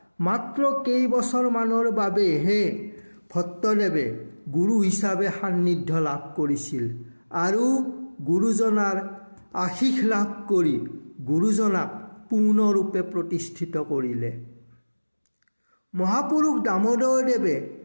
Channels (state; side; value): inverted; both; correlation -1.00